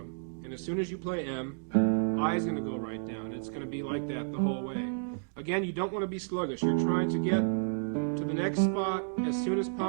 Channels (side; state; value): left; silent; digital silence